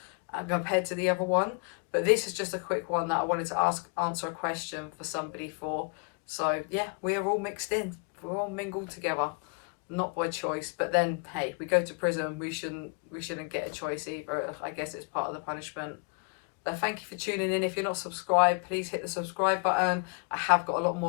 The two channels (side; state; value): right; quieter; 36.4 dB